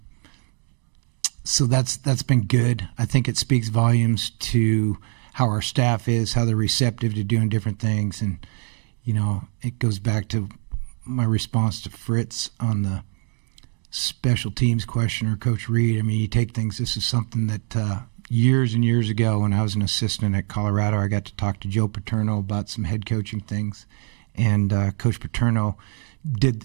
So that's been good. I think it speaks volumes to how our staff is, how they're receptive to doing different things. And, it goes back to my response to Fritz on the special teams question, or Coach Reed. I mean, you take things, this is something that years and years ago when I was an assistant at Colorado, I got to talk to Joe Paterno about some head coaching things. And Coach Paterno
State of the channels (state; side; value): quieter; left; 39.4 dB